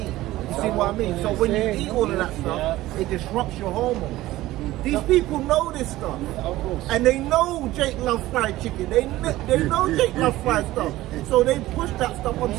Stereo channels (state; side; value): quieter; left; 16.5 dB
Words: You see what I mean? So when you eat all of that stuff, it disrupts your hormones. These people know this stuff, and they know Jake loves fried chicken. They know Jake loves fried stuff, so they push that stuff